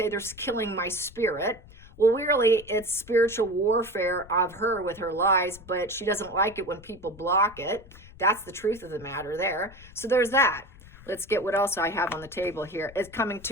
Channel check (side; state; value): left; noise; rumble, 21 dB below the sound